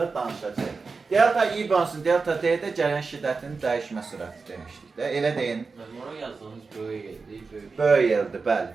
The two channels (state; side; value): quieter; left; 4.5 dB